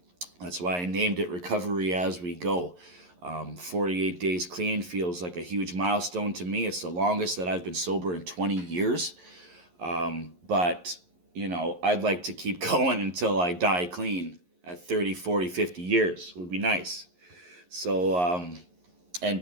That's why I named it Recovery As We Go. 48 days clean feels like a huge milestone to me. It's the longest that I've been sober in 20 years. But, I'd like to keep going until I die clean at 30, 40, 50 years would be nice. So,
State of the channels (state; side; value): late; left; 11 ms